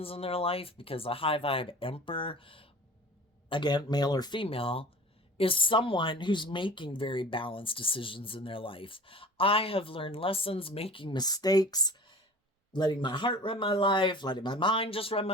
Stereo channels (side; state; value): both; normal; correlation 0.41